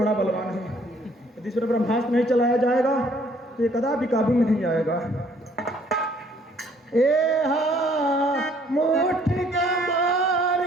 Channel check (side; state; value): both; normal; correlation 0.62